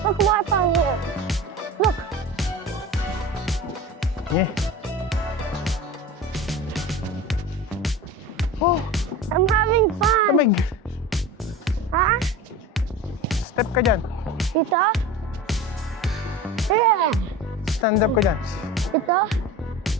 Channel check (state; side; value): normal; both; correlation 0.32